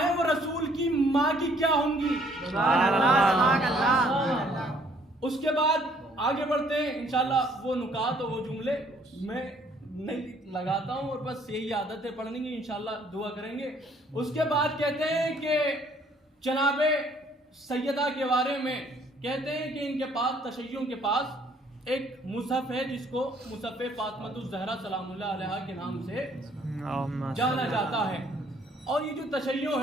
وہ رسول کی ماں کی کیا ہوں گی؟ اس کے بعد آگے بڑھتے ہیں انشاءاللہ. وہ نکات اور وہ جملے میں نہیں لگاتا ہوں اور بس یہی عادت ہے پڑھنے کی، انشاءاللہ دعا کریں گے. اس کے بعد کہتے ہیں کہ جناب سیدہ کے بارے میں کہتے ہیں کہ ان کے پاس تشیعوں کے پاس ایک مصحف ہے جس کو مصحف فاطمۃ الزہرا سلام اللہ علیہا کے نام سے جانا جاتا ہے. اور یہ جو تشیع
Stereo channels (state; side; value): normal; both; correlation 0.62